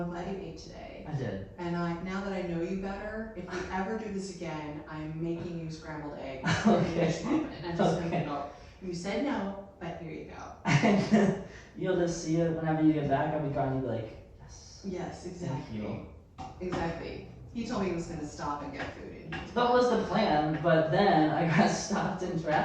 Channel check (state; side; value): identical; both; correlation 1.00